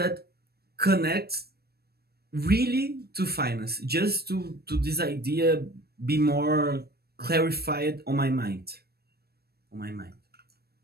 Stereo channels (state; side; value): late; left; 0.46 ms